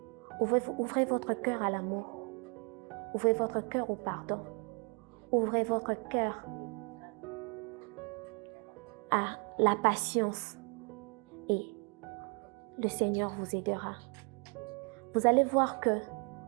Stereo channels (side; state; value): left; quieter; 34.9 dB